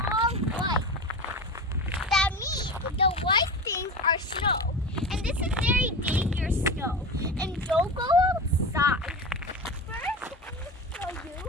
white. That means the white things are snow. And this is very dangerous snow. And don't go outside. First, I'm going to show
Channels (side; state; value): both; normal; correlation 0.28